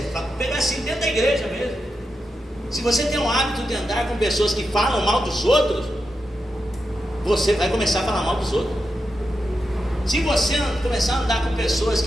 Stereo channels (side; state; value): both; normal; correlation 0.88